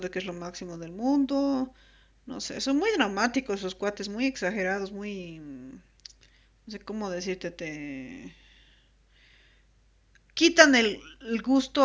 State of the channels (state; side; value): identical; both; correlation 1.00